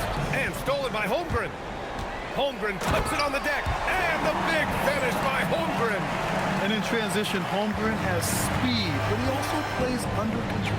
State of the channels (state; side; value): identical; both; correlation 1.00